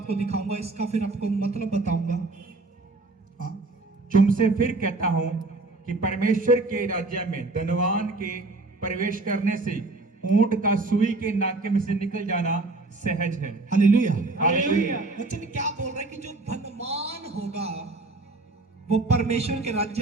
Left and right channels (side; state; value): left; quieter; 3.2 dB